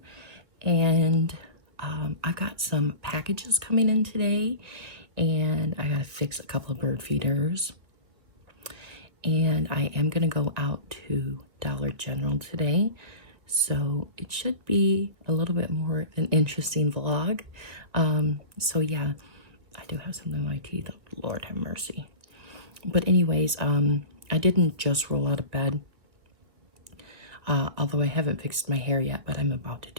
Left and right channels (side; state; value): left; late; 1.7 ms